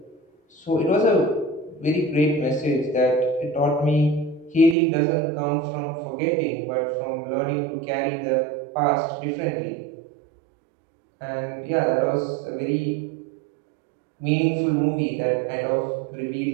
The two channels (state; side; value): drops out; left; at 4.8 s